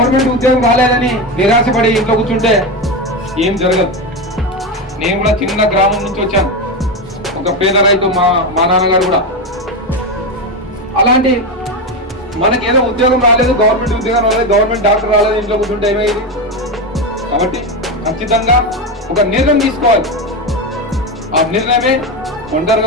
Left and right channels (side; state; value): both; normal; correlation 0.15